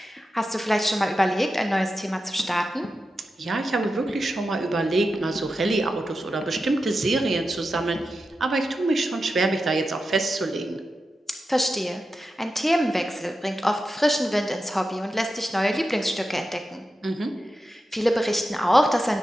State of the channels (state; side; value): normal; both; correlation 0.90